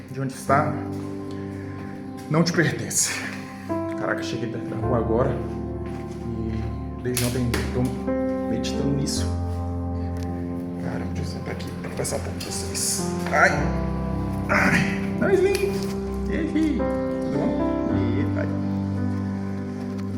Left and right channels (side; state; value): both; identical; correlation 1.00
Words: de onde está não te pertence. Caraca, cheguei perto da rua agora e desde ontem estou meditando nisso. Caramba, deixa eu sentar aqui para conversar um pouco com vocês. Ai, não, Slim. Tudo bom? Ai.